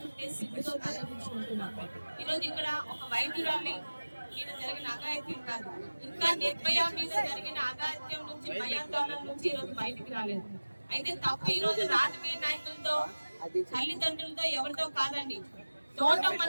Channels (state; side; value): inverted; both; correlation -1.00